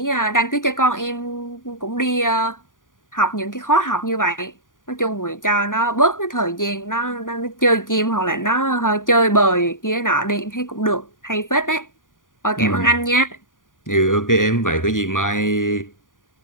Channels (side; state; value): right; late; 0.89 ms